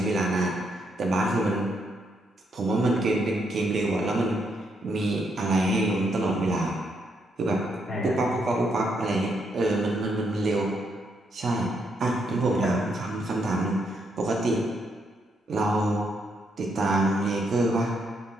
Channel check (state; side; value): normal; both; correlation 0.77